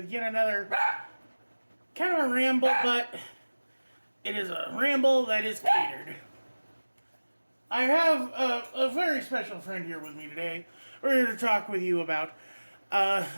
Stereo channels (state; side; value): inverted; both; correlation -1.00